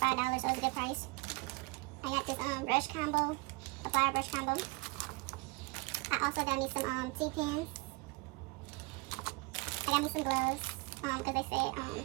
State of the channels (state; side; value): quieter; left; 26.9 dB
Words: so it's a good price. I got this brush combo, a plier brush combo. I also got me some T-pins. I got me some gloves, because they said,